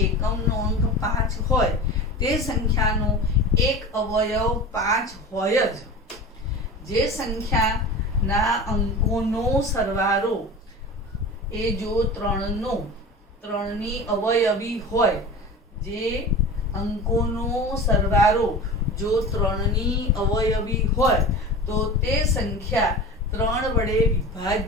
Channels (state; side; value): normal; both; correlation 0.33